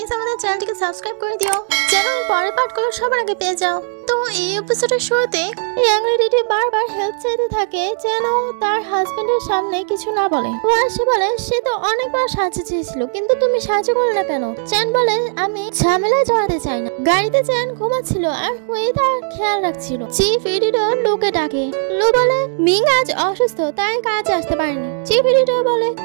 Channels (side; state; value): left; silent; digital silence